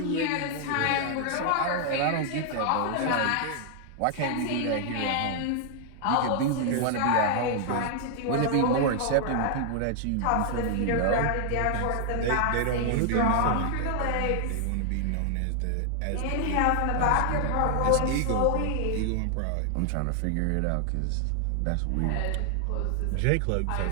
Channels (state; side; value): different; both; correlation 0.00